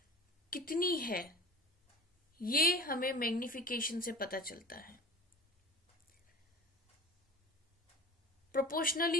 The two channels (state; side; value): normal; both; correlation 0.36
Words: कितनी है, ये हमें मैग्निफिकेशन से पता चलता है।